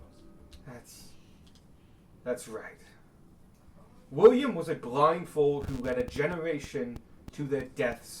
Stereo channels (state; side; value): identical; both; correlation 1.00